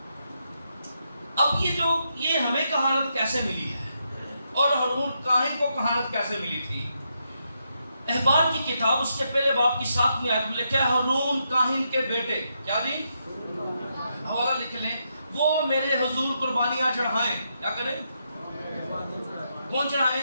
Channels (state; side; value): inverted; both; correlation -0.81